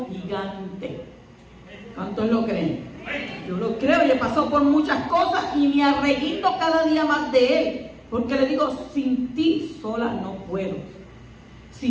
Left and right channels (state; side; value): identical; both; correlation 1.00